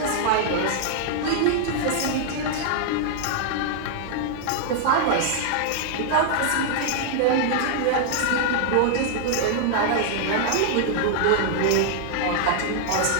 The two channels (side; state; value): both; different; correlation 0.00